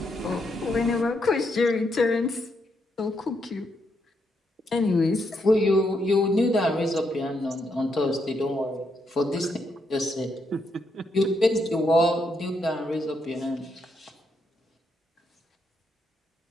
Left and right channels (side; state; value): both; normal; correlation 0.79